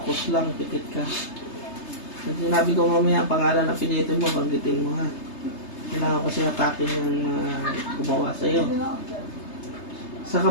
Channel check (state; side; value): late; right; 3.3 ms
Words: lang, pikit ka. Pag sinabi ko mamaya ang pangalan na apelyido mo, banggitin mo, ha? Kailangan ko sinatakin yung gumawa sa'yo. Sa